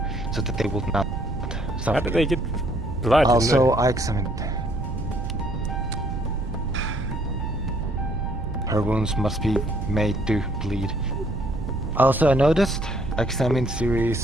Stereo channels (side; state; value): right; noise; rumble, 6 dB below the sound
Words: so that they would not suffer. How did they get blood? Also, I examined. Her wounds must be made to bleed. Also, I noticed, examined